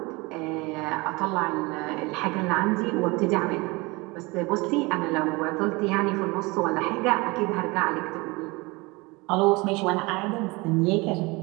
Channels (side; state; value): left; quieter; 24.6 dB